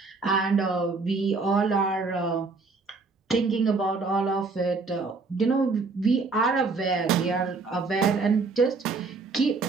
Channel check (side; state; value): left; quieter; 4.1 dB